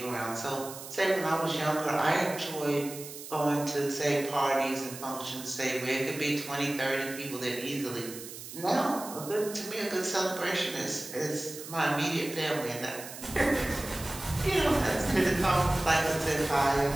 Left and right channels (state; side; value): noise; right; hiss, 12 dB below the sound